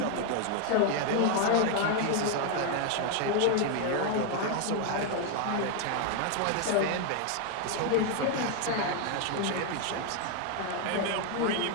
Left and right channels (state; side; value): different; both; correlation 0.01